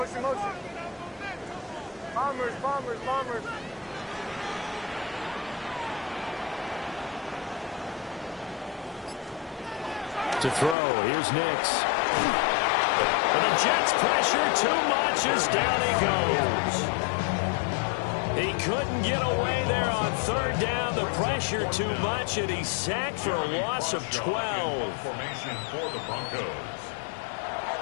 Bombers. To throw, here's Nix. And the Jets pressure too much as down he goes. He couldn't get away there on 3rd down. The pressure too much, and he's sacked for a loss of 12. Formation for the Broncos.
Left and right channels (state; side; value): drops out; right; at 10.8 s